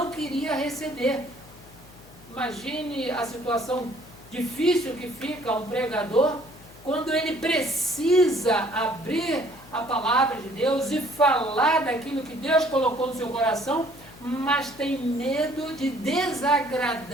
queria receber. Imagine a situação difícil que fica um pregador quando ele precisa abrir a palavra de Deus e falar daquilo que Deus colocou no seu coração, mas tem medo de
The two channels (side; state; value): left; noise; hum, 23 dB below the sound